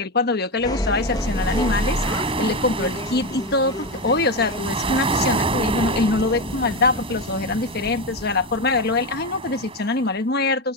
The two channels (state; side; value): normal; both; correlation 0.14